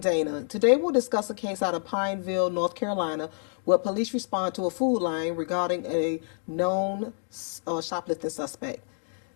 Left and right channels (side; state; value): right; silent; digital silence